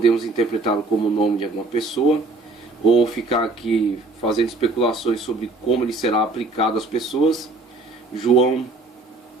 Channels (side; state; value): left; quieter; 3.3 dB